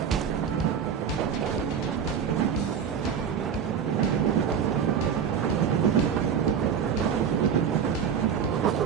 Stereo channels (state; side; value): quieter; left; 7.5 dB